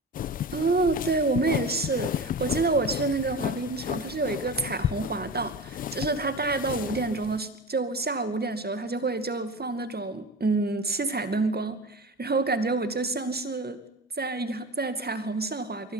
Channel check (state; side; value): normal; both; correlation 0.31